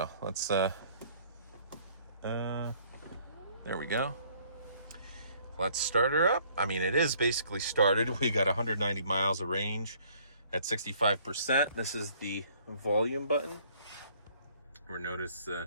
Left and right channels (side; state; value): both; inverted; correlation -0.60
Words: let's, there we go. Let's start her up. I mean, it is basically started. We got 190 miles of range at 65%. This is the volume button. Or notice